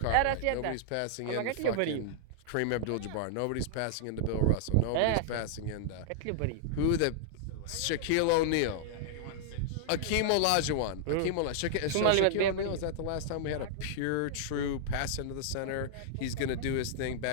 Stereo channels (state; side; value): different; both; correlation -0.01